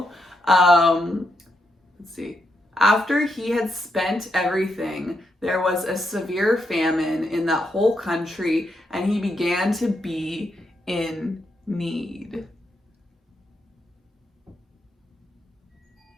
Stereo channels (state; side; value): normal; both; correlation 0.81